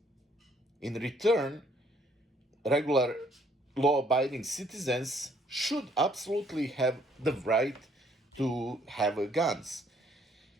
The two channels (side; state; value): both; normal; correlation 0.64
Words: In return, regular law-abiding citizens should absolutely have the right to have guns.